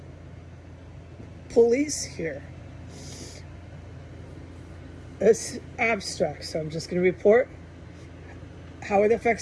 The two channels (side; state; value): both; identical; correlation 1.00